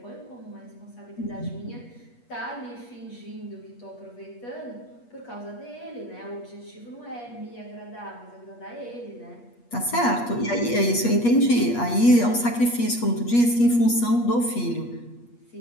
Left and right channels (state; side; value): late; right; 8.4 ms